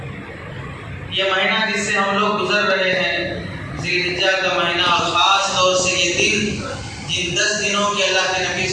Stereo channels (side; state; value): both; identical; correlation 1.00